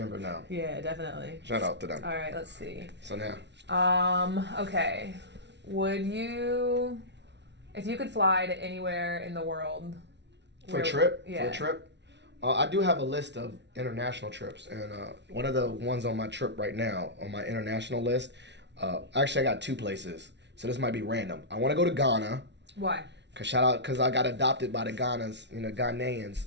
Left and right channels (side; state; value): left; late; 0.51 ms